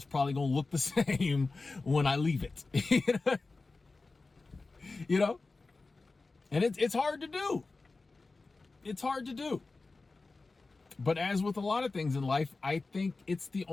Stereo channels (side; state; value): right; quieter; 3.7 dB